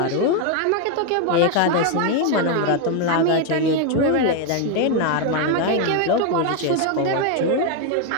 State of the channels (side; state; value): both; different; correlation 0.01